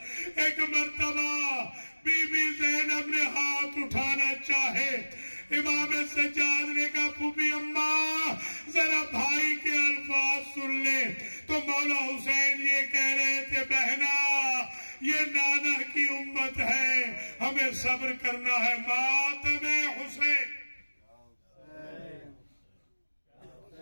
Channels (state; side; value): inverted; both; correlation -1.00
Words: ایک مرتبہ بی بی زینب نے ہاتھ اٹھانا چاہے، امام سجاد نے کہا پھوپھی اماں ذرا بھائی کے الفاظ سن لے، تو مولا حسین یہ کہہ رہے تھے بہنا یہ نانا کی امت ہے، ہمیں صبر کرنا ہے، ماتم حسین